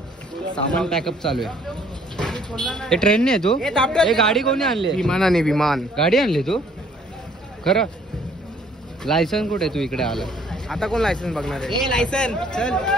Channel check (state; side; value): normal; both; correlation 0.60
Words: सामान पॅकअप चालू आहे. हे ट्रेनने आहे तू? हे गाडी कोणी आणली? विमानाने विमान. गाडी आणली तू खरं? लायसन कुठे तू इकडे आला? आता कोण लायसन्स बघणार आहे? लायसन चल.